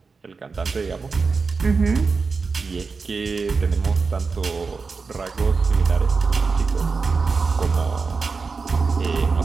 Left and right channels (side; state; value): left; quieter; 4.7 dB